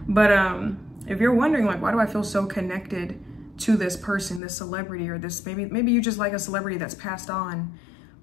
But if you're wondering, like, why do I feel so connected to this person, this celebrity, or this, maybe you just like a celebrity that's passed on.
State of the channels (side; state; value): right; drops out; at 4.4 s